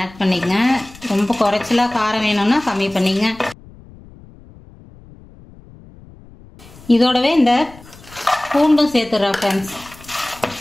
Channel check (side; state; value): left; noise; rumble, 22 dB below the sound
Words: பண்ணிக்கங்க. ரொம்ப குறைச்சலாக காரம் வேணும்னா கம்மி பண்ணிங்க. இதோடவே இந்த பூண்டும் சேர்த்துடுறேன் ஃப்ரெண்ட்ஸ்.